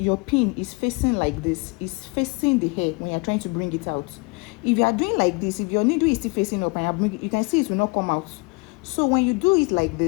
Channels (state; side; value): quieter; right; 29.2 dB